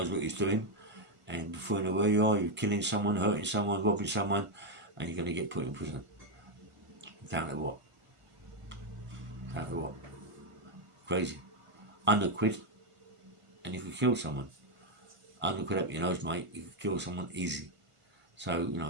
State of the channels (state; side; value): late; left; 1.5 ms